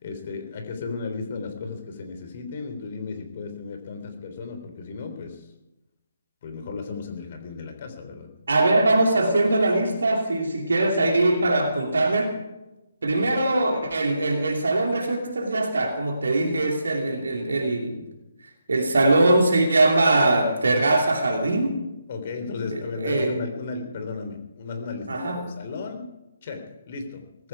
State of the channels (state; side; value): inverted; both; correlation -0.84